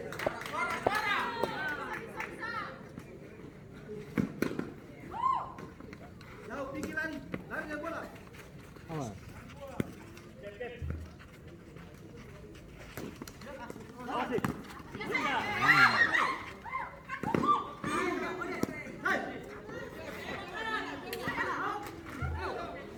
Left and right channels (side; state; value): both; identical; correlation 1.00